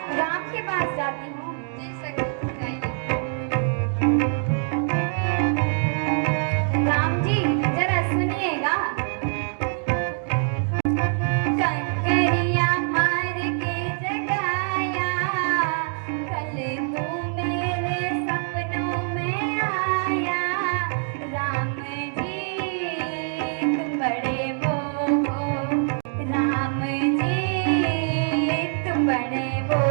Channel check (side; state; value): left; silent; 59 dB below the other